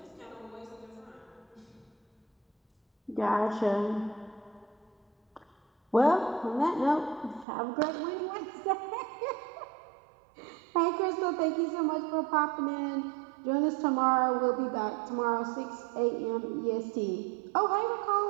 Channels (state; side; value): drops out; left; at 7.5 s